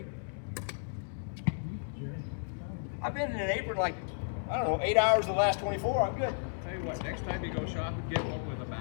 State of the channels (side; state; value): right; silent; digital silence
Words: I've been in an apron like, I don't know, 8 hours the last 24. I'm good. Tell you what, next time you go shopping, get one with a